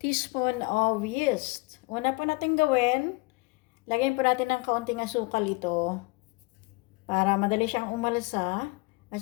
of yeast. Una po natin gawin, lagyan po natin ng kaunting asukal ito para madali siyang umalsa at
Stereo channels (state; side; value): quieter; right; 26.5 dB